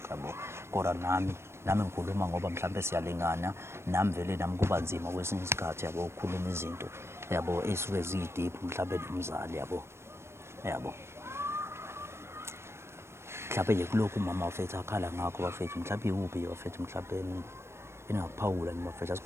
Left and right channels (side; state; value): left; late; 0.12 ms